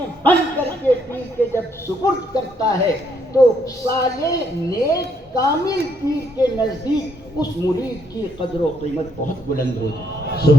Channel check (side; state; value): both; normal; correlation 0.72